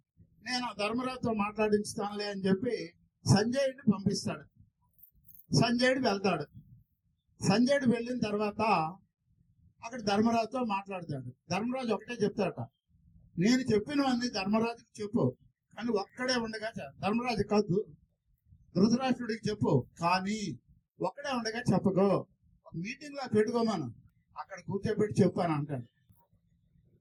నేను ధర్మరాజుతో మాట్లాడించుతానులే అని చెప్పి సంజయుడిని పంపిస్తాడు. సంజయుడు వెళ్తాడు. సంజయుడు వెళ్ళిన తర్వాత అక్కడ ధర్మరాజుతో మాట్లాడతాడు. ధర్మరాజు ఒకటే చెప్తాడట, నేను చెప్పినవన్నీ ధర్మరాజుకి చెప్పు, కానీ ఒక్కడే ఉండగా ధర్మరాజు కాదు ధృతరాష్ట్రుడికి చెప్పు, కానీ ఒక్కడే ఉండగా చెప్పకో, మీటింగ్ లో పెట్టుకోమను, అక్కడ కూర్చోబెట్టి చెప్పాను అంటాడు.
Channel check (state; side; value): identical; both; correlation 1.00